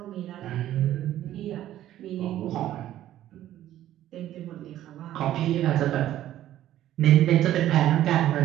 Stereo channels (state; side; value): quieter; left; 12.9 dB